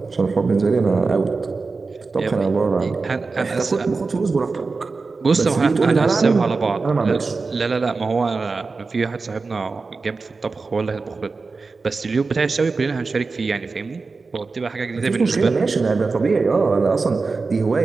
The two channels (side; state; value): left; quieter; 4.2 dB